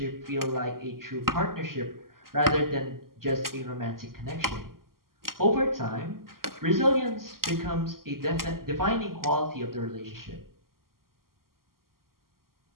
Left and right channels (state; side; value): late; left; 0.92 ms